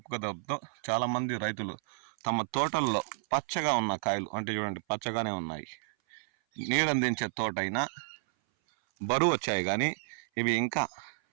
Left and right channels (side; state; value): left; silent; 57 dB below the other